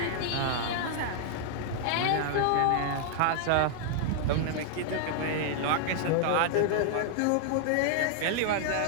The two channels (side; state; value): both; different; correlation 0.00